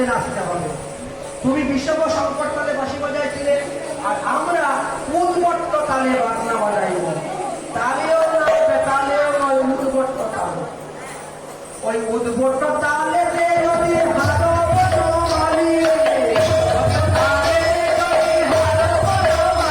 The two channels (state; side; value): identical; both; correlation 1.00